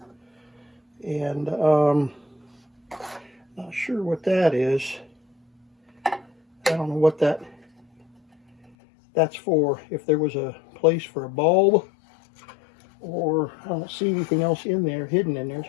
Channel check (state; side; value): drops out; right; at 8.7 s